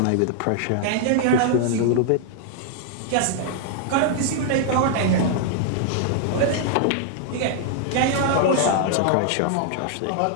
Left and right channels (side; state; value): both; different; correlation 0.00